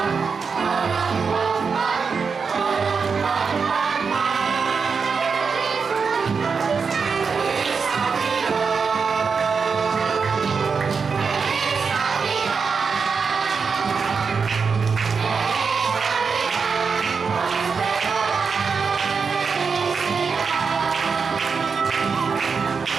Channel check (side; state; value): left; quieter; 5.4 dB